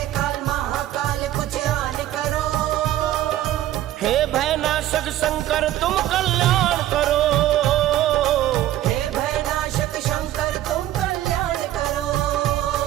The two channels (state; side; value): quieter; left; 13.5 dB